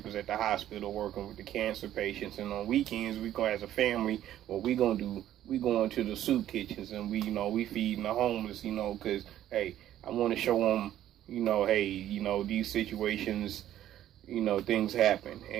at the hospital working with the cancer patients, and on weekends we go as a family. What we gonna do? We going to the soup kitchens and we feeding the homeless, cause hey, I want to show them, hey, these situations, things happen.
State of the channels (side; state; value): left; quieter; 12.2 dB